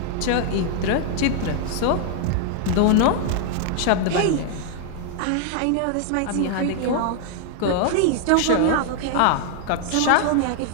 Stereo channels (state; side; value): different; both; correlation 0.00